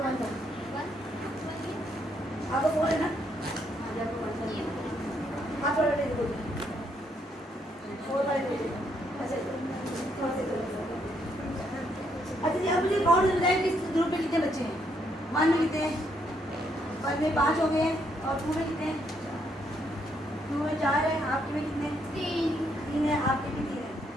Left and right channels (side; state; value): both; normal; correlation 0.74